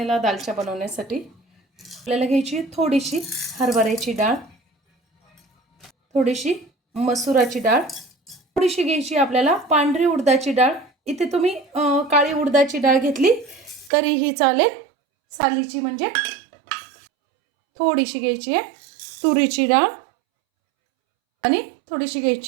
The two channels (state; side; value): drops out; left; at 13.9 s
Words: दालचा बनवण्यासाठी आपल्याला घ्यायची थोडीशी हरभऱ्याची डाळ, थोडीशी मसुराची डाळ, थोडीशी घ्यायची आपल्याला पांढरी उडदाची डाळ। इथे तुम्ही काळी उडदाची डाळ घेतली तरीही चालेल, सालीची म्हणजे। थोडीशी घ्यायची आहे तुरीची डाळ आणि थोडीशी